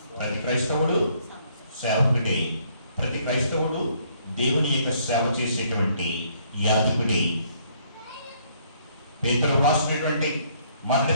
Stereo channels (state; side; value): inverted; both; correlation -0.66